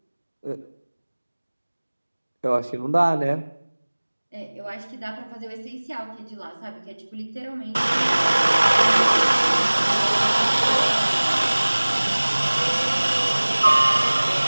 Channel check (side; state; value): both; inverted; correlation -1.00